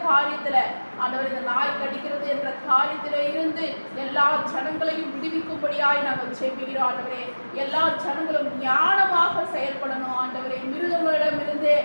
காரியத்துல ஆண்டவர் இந்த நாய் கடிக்கிறது என்ற காரியத்தில இருந்து எல்லா ஜனங்களையும் விடுவிக்கும்படியாய் நாங்கள் ஜெபிக்கிறோம் ஆண்டவரே. எல்லா ஜனங்களும் ஞானமாக செயல்படணும் ஆண்டவரே. மிருகங்களிடமிருந்து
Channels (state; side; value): inverted; both; correlation -1.00